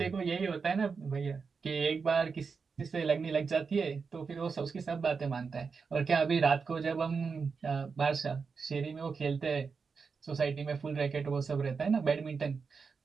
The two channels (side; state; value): left; quieter; 5.2 dB